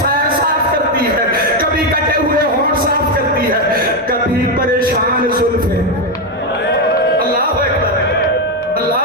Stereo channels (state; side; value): normal; both; correlation 0.06